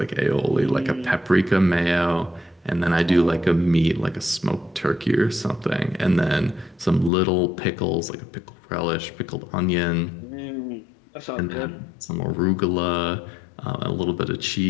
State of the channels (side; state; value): right; drops out; at 7.1 s